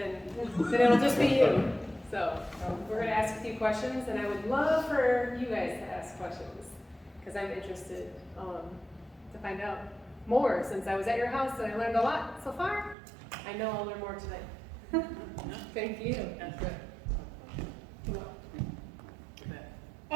it'll just be you. So we're going to ask a few questions, and I would love for you guys to ask questions, because I'm interested to find out more, since I was at your house and I learned a lot so far. I know I'll learn more tonight. Thank you.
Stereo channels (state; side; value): drops out; left; at 13.0 s